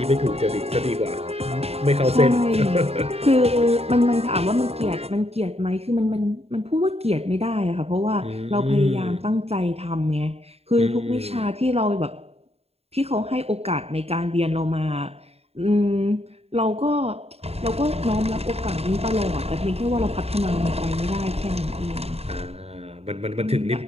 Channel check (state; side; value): late; left; 0.30 ms